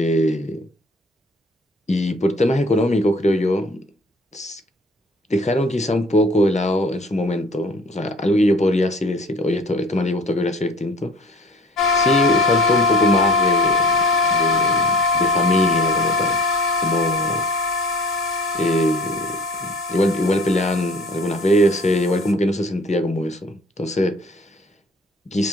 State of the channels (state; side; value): normal; both; correlation 0.47